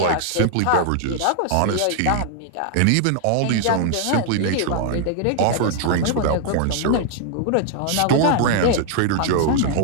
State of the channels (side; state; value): both; different; correlation 0.00